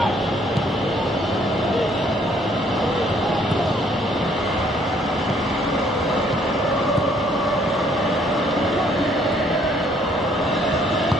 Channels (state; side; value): normal; both; correlation 0.64